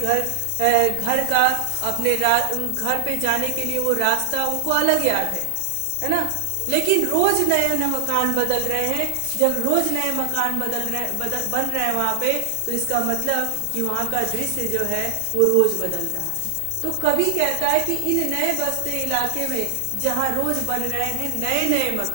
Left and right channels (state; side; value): different; both; correlation 0.00